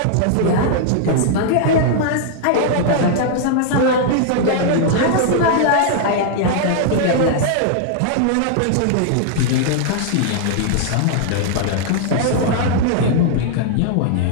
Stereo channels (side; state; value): both; different; correlation -0.01